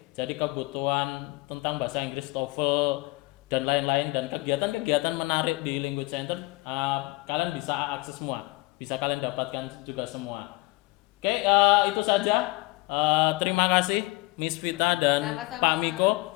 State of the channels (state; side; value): quieter; right; 22.8 dB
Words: Jadi kebutuhan tentang bahasa Inggris, TOEFL dan lain-lain, dan kegiatan-kegiatan menarik di Language Center, kalian bisa akses semua, bisa kalian dapatkan juga semua. Oke, itu saja. Terima kasih Miss Vita dan Sama-sama. Pak Miko.